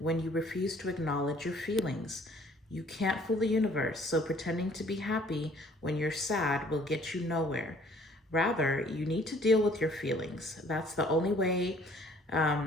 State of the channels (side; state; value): both; normal; correlation 0.57